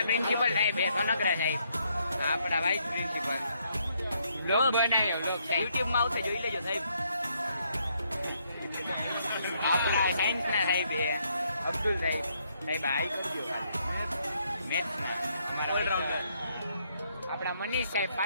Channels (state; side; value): inverted; both; correlation -0.73